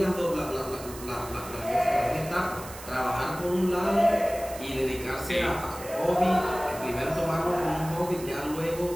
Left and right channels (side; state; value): right; noise; hiss, 14 dB below the sound